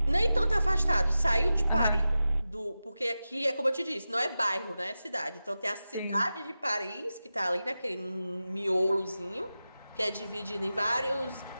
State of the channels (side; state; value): both; inverted; correlation -0.93